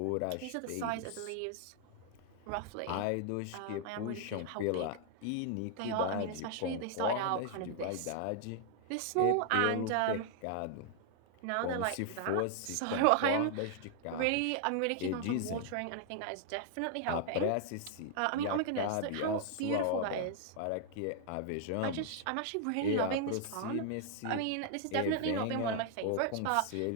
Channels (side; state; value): both; different; correlation 0.00